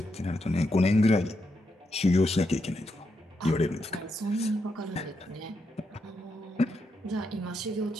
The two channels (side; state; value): both; normal; correlation 0.82